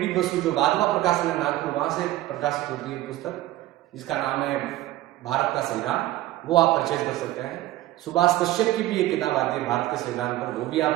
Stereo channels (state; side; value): quieter; left; 15.7 dB